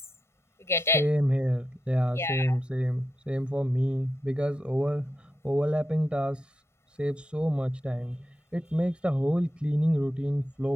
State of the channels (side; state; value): both; normal; correlation 0.87